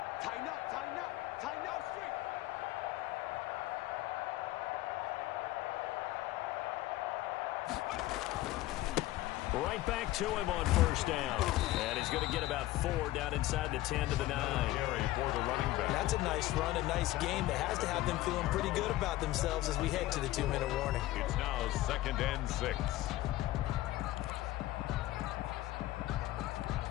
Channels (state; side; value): quieter; right; 16.4 dB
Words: Right back to him on 1st down. And he's going to get about 4 down inside the 10 to the 9. Carry for the running back. That's a nice run, a nice game that has to have them feeling pretty good about themselves as we head to the 2-minute warning. It's now 2nd and 6.